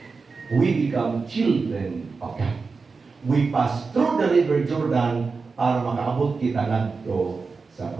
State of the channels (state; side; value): quieter; left; 4.5 dB